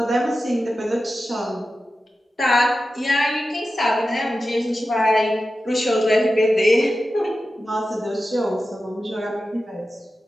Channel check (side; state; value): both; normal; correlation 0.93